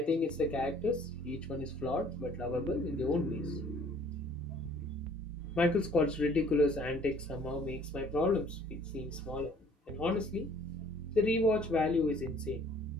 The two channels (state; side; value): normal; both; correlation 0.56